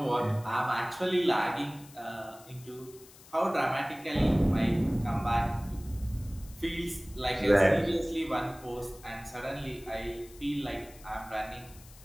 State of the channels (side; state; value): left; noise; hiss, 22 dB below the sound